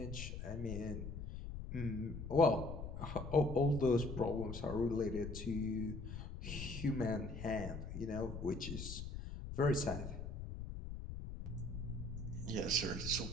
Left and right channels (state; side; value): noise; left; rumble, 7 dB below the sound